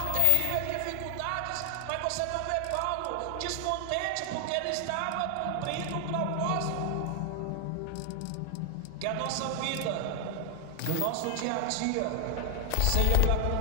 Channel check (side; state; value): both; different; correlation 0.00